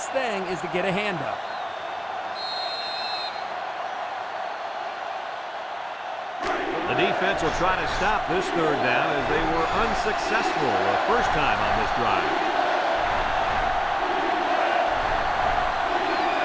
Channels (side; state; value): both; identical; correlation 1.00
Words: thing is to get a handout. The defense will try to stop this third down as they were unsuccessful the first time on this drive.